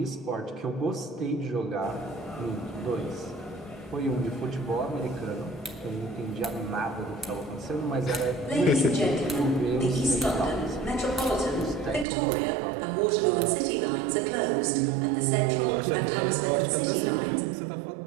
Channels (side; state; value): left; drops out; at 12.1 s